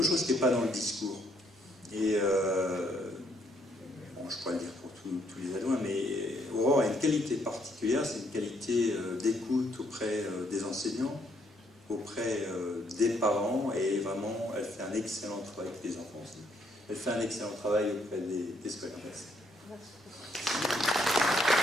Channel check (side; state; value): both; normal; correlation 0.70